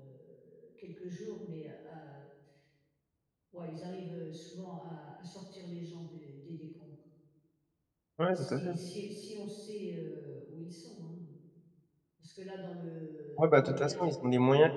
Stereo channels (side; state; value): both; identical; correlation 1.00